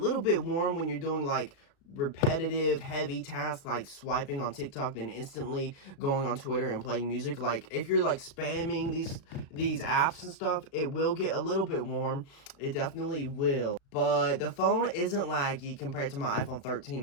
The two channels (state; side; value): late; right; 36 ms